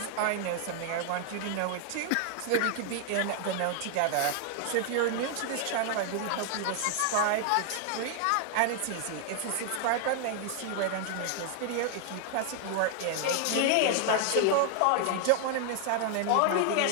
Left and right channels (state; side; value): different; both; correlation 0.00